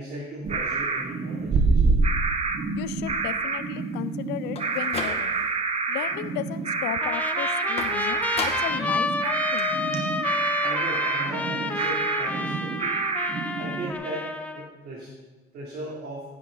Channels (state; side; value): normal; both; correlation 0.26